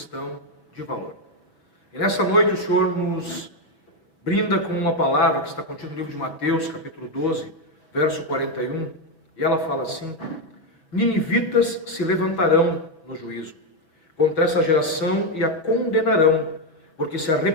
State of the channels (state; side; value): late; right; 5.6 ms